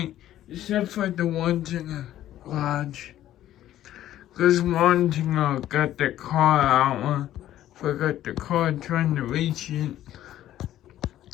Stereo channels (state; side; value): quieter; right; 12.8 dB